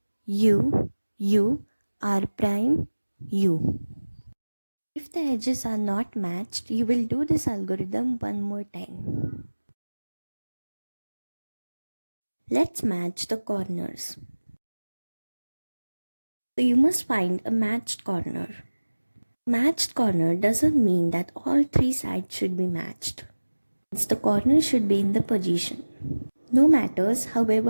U, U, R prime, U. If the edges are not matched, you will do this algorithm one more time. Let's match the corners. So you must find a matched corner. Matched corner doesn't mean that all three sides should be matched. The corner should be in the position. No matters,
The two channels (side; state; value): both; inverted; correlation -1.00